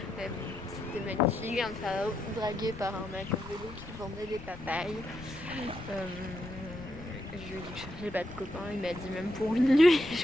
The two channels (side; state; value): left; noise; rumble, 14 dB below the sound